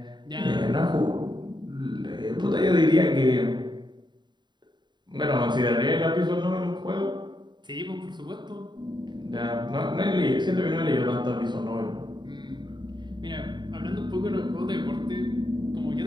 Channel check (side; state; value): left; late; 0.22 ms